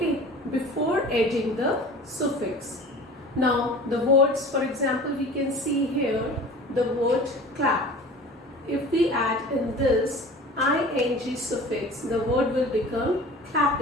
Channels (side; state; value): both; normal; correlation 0.40